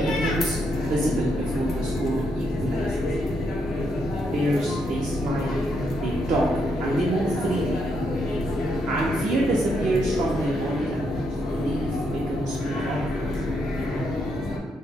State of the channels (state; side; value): normal; both; correlation 0.78